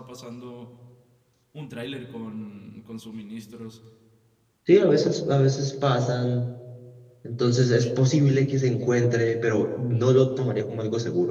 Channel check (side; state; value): both; identical; correlation 1.00